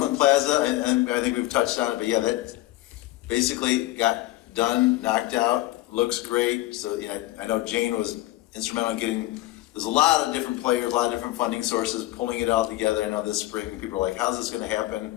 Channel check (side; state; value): right; quieter; 17.3 dB